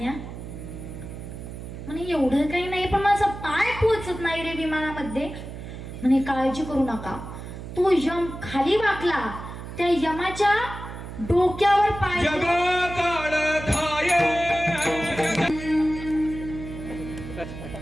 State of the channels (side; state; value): right; noise; hum, 10 dB below the sound